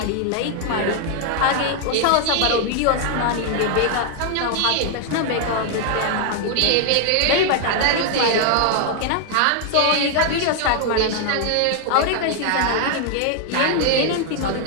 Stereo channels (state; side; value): different; both; correlation 0.00